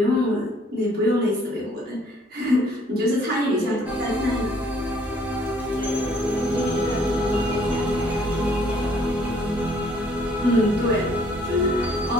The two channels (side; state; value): both; normal; correlation 0.62